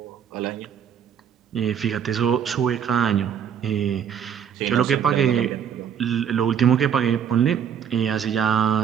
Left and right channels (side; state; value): left; quieter; 8.3 dB